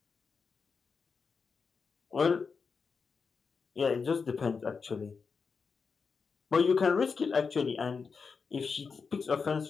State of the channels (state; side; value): quieter; right; 5.3 dB